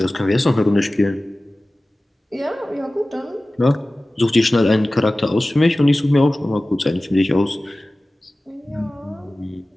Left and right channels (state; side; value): normal; both; correlation 0.97